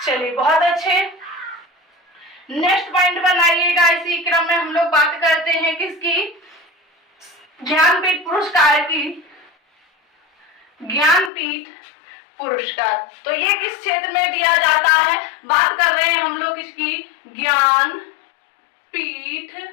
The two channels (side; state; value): right; drops out; at 11.3 s